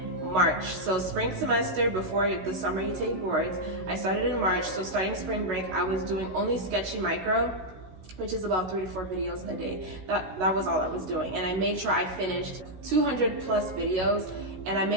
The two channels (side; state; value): left; late; 16 ms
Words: March. So spring semester, before the summer you take boards, I started in March. So starting spring break, I was doing only Sketchy Micro, which is about 3 to 4 videos a day. That was all I was doing. And I made sure I finished 200 plus videos, and I